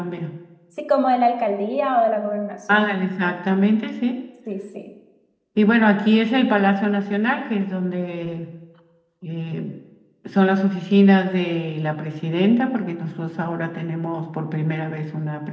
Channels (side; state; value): both; identical; correlation 1.00